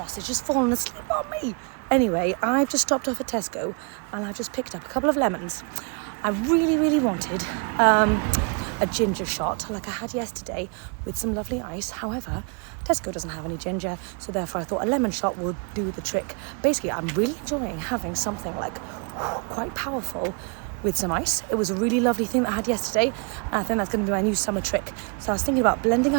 has fallen asleep on me. Anyway, I've just stopped off at Tesco and I've just picked up a couple of lemons. I really, really wanted a ginger shot like I had yesterday with some lovely ice. However, Tesco doesn't have any ginger, so therefore I thought a lemon shot would do the trick. Basically, I'm really enjoying having something like quite powerful with some ice. It was a really lovely thing that I had yesterday, and I think that's going to be my new summer trick. So I was thinking about blending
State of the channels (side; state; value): left; quieter; 36.0 dB